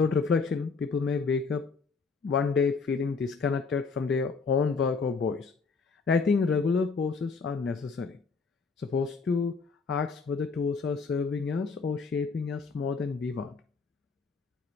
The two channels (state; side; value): quieter; right; 4.7 dB